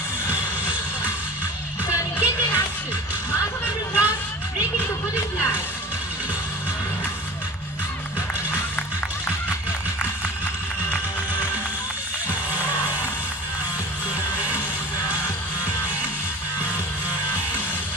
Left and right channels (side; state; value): both; normal; correlation 0.39